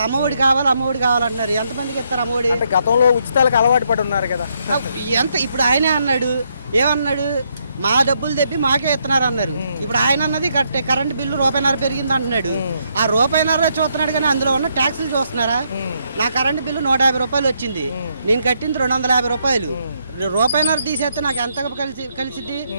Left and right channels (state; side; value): inverted; both; correlation -0.75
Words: అమ్మఒడి కావాలంటున్నారు. ఎంతమందికి ఇస్తారు అమ్మఒడి? గతంలో ఉచితాలకు అలవాటు పడి ఉన్నారు కదా. ఇప్పుడు ఆయనే అన్నాడు, ఏమన్నాడు? మా డబ్బులు తెప్పి మాకే ఇస్తున్నారు అన్నారు. ఇప్పుడు ఆయన అన్నది కరెంట్ బిల్లు ₹1.50 పెరిగింది అంటున్నాడు. ఆ ₹1.50 చూస్తున్నాడు, కానీ అందులో ఉన్న ట్యాక్సులు చూస్తున్నారా? నా కరెంట్ బిల్లు ₹150 వచ్చింది, నేను కట్టింది ₹250. రూపాయిన్నర తీసేస్తే నాకు ఎంత కలిసిద్ది